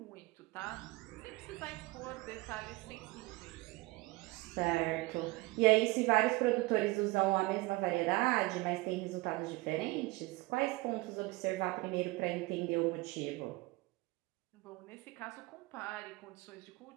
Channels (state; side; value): quieter; left; 22.1 dB